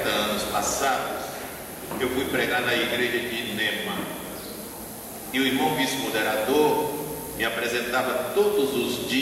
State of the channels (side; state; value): both; identical; correlation 1.00